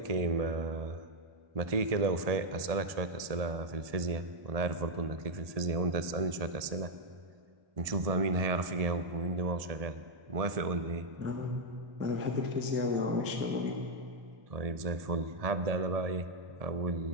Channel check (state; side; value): late; left; 1.7 ms